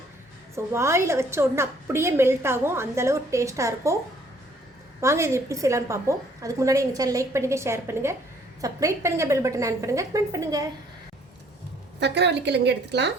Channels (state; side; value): normal; both; correlation 0.61